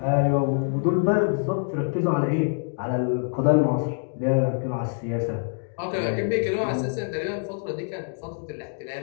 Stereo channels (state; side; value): silent; right; digital silence